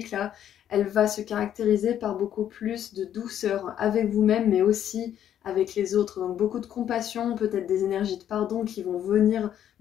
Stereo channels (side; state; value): right; quieter; 10.3 dB